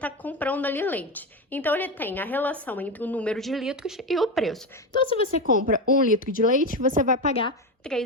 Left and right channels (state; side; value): normal; both; correlation 0.17